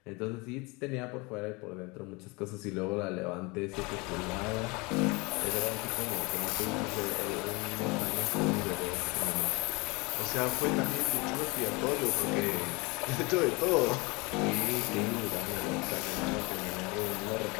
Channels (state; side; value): quieter; right; 26.6 dB